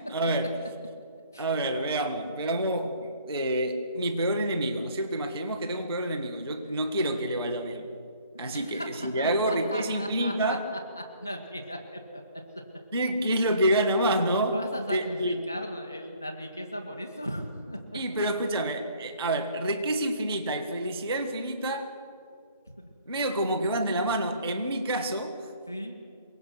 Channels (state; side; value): inverted; both; correlation -0.57